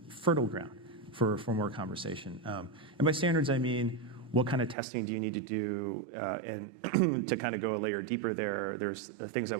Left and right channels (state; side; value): drops out; left; at 4.8 s